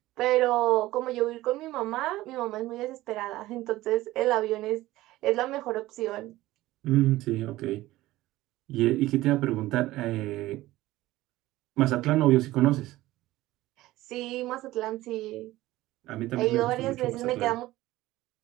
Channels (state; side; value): quieter; left; 17.0 dB